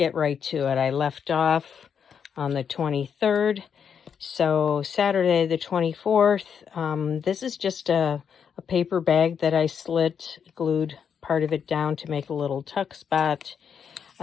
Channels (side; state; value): right; quieter; 7.3 dB